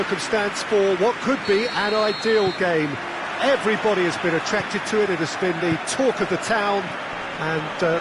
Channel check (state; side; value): identical; both; correlation 1.00